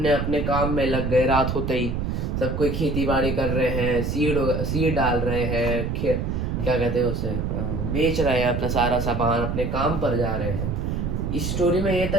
अपने काम में लग गए। रात होते ही सब कोई खेती बाड़ी कर रहे हैं, सीड डाल रहे हैं, क्या कहते हैं उसे, बेच रहे हैं अपना सारा सामान, अपने काम पर जा रहे हैं। इस स्टोरी में ये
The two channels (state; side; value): noise; right; rumble, 1 dB below the sound